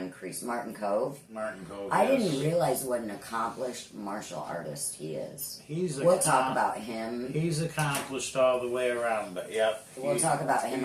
Kreese, Martin Cove. I didn't realize what an accomplished martial artist he is. We'll talk about him. He's accomplished all the way around, but yep. We'll talk about him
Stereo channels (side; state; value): both; identical; correlation 1.00